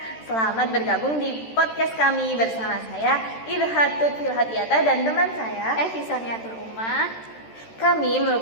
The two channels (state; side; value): late; right; 13 ms